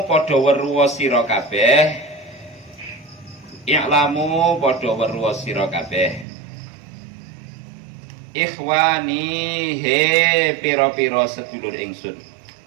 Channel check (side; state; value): left; drops out; at 6.2 s